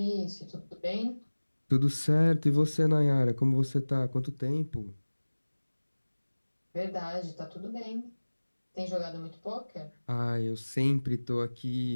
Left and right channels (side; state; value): both; inverted; correlation -1.00